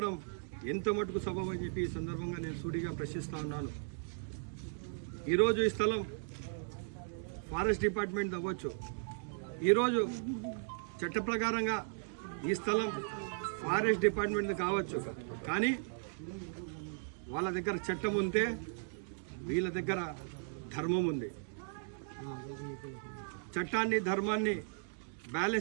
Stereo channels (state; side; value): silent; left; digital silence